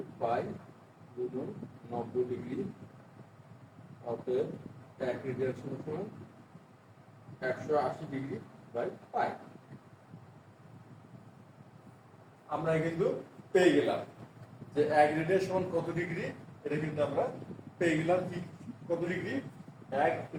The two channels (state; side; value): identical; both; correlation 1.00